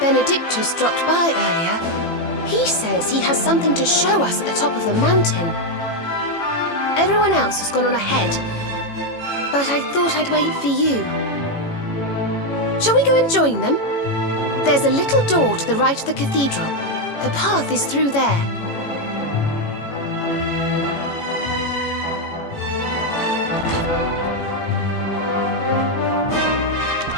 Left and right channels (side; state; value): right; late; 18 ms